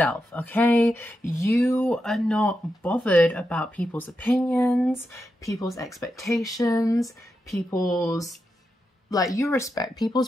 okay? You are not bothered about people's opinions, people's expectations, people's, like, you respect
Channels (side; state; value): both; normal; correlation 0.87